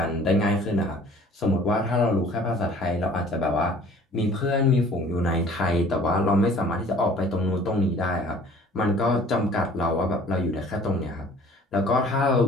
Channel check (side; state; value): both; normal; correlation 0.51